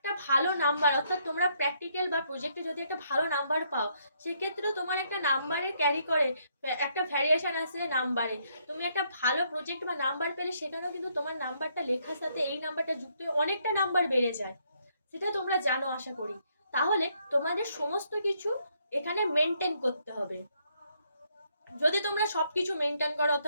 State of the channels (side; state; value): both; inverted; correlation -0.72